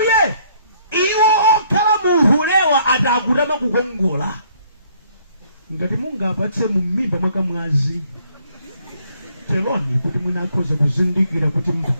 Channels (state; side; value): inverted; both; correlation -0.64